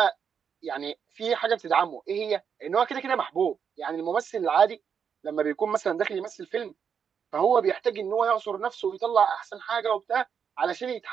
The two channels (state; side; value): quieter; left; 7.1 dB